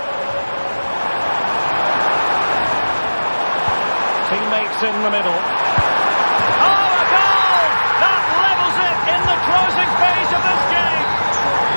Teammates in the middle. Oh, a goal! That levels it in the closing phase of this game.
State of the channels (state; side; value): inverted; both; correlation -1.00